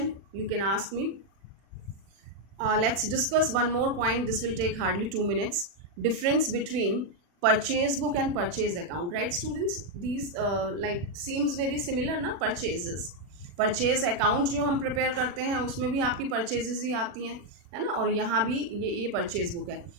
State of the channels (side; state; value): left; late; 40 ms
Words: you can ask me. Let's discuss one more point. This will take hardly 2 minutes. Difference between purchase book and purchase account, right students? These like seems very similar ना, purchases. Purchase account जो हम prepare करते हैं उसमें भी आपकी purchases ही आती हैं, है ना, और यहाँ भी ये परचेज बुक है.